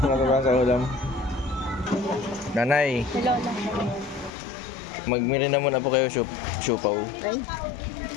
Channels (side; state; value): right; drops out; at 4.3 s